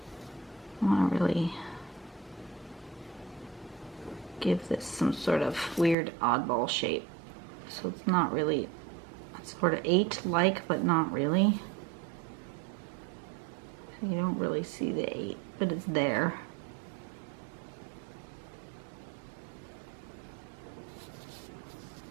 want to really give this some sort of weird oddball shape. So it's not really, it's sort of 8-like, but not really. You don't really see the 8, but it's there.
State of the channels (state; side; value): drops out; left; at 6.0 s